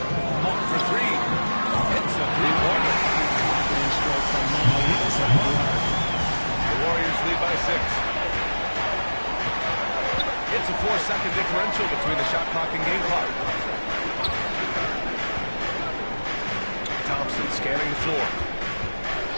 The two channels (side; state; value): both; inverted; correlation -1.00